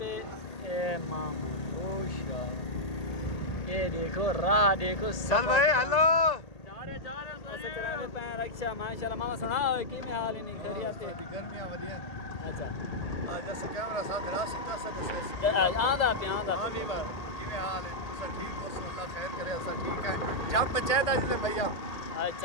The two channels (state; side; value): late; right; 1.8 ms